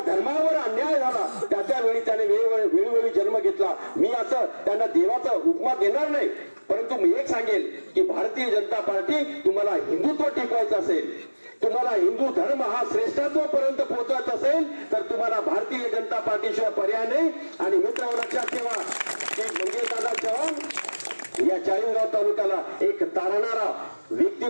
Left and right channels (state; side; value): inverted; both; correlation -1.00